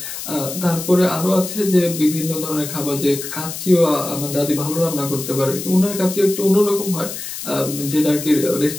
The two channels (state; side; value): noise; left; hiss, 8 dB below the sound